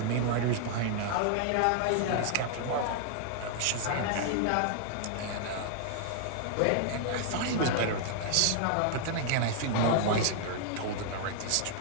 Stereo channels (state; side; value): different; both; correlation 0.00